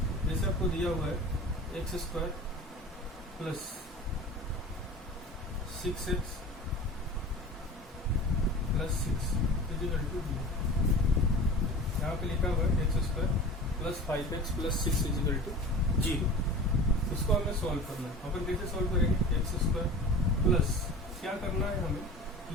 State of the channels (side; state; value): both; normal; correlation 0.36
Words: जैसे आपको दिया हुआ है x square plus 6x plus 6 is equal to 0। यहाँ पे लिखा हुआ है x square plus 5x plus 6 is equal to 0। इसको हमें सॉल्व करना है। अपन कैसे सॉल्व करेंगे? एक्स स्क्वायर प्लस क्या करना है हमें